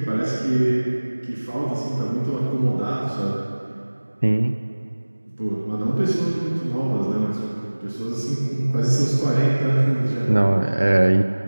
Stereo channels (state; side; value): inverted; both; correlation -1.00